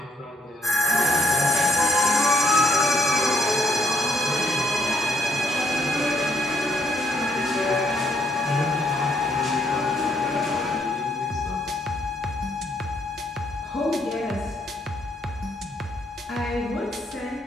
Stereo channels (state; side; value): normal; both; correlation 0.71